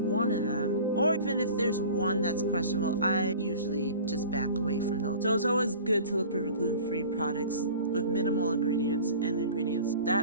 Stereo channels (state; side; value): inverted; both; correlation -0.41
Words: of them, or even if there's one that's questionable, I usually just back away from those. So it's always good to look for gluten-free products with minimal ingredients and ingredients